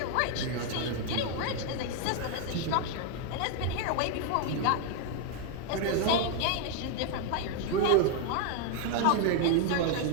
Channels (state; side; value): different; both; correlation 0.00